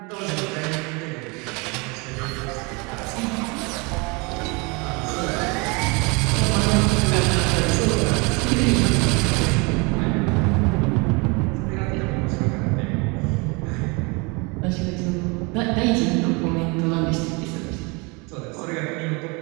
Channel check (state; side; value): quieter; left; 29.0 dB